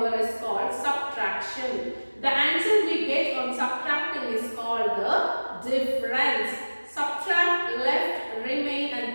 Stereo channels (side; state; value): both; inverted; correlation -1.00